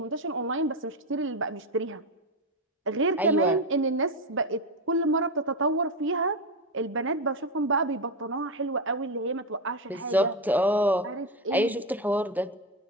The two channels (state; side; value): normal; both; correlation 0.11